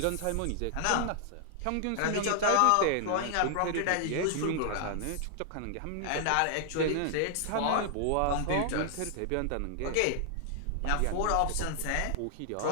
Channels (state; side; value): different; both; correlation 0.00